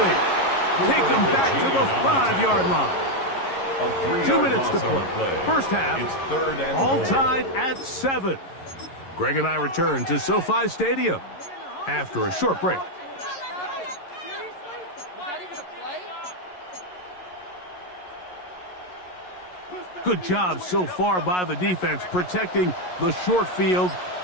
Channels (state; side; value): late; right; 11 ms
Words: Take them back to the 5-yard line. 2 minutes to play. First half, all tied at 7. Greg and I return to SoFi Stadium after a short break. Good job so far by the defense protecting the short field.